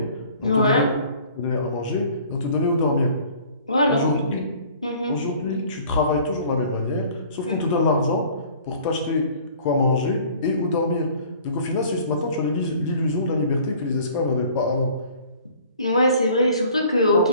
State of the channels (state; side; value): inverted; both; correlation -0.51